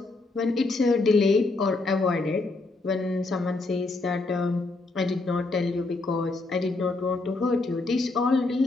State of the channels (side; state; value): right; quieter; 3.3 dB